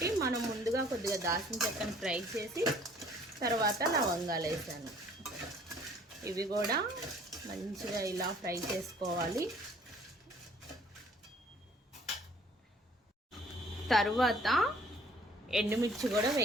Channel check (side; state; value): both; normal; correlation 0.56